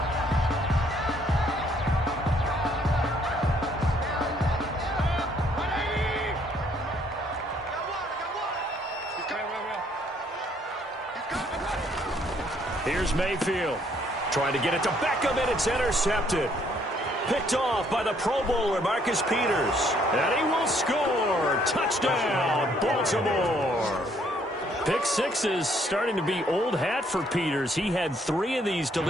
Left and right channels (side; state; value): both; normal; correlation 0.66